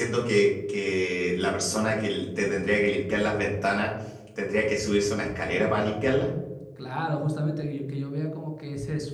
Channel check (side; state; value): both; identical; correlation 1.00